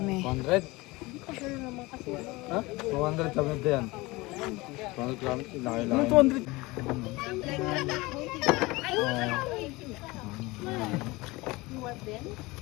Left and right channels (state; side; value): quieter; right; 22.2 dB